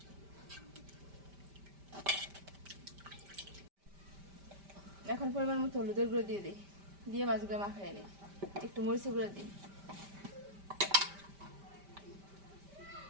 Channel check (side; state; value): left; late; 5.1 ms